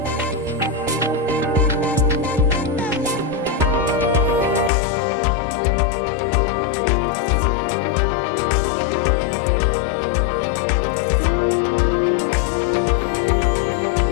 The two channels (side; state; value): right; drops out; at 4.7 s